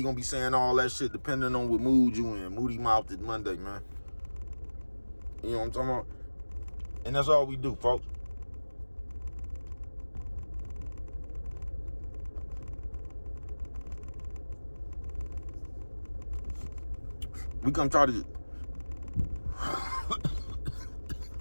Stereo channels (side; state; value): both; inverted; correlation -1.00